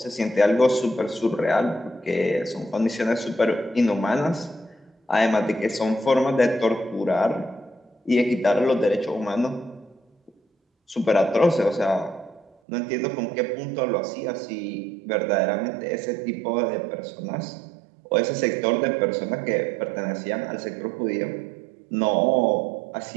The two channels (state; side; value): drops out; left; at 12.5 s